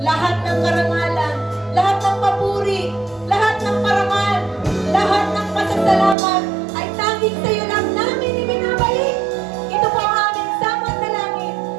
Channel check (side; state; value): left; drops out; at 6.2 s